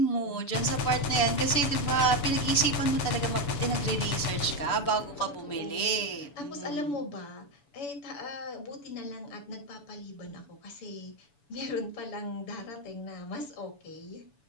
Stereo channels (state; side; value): late; right; 7.0 ms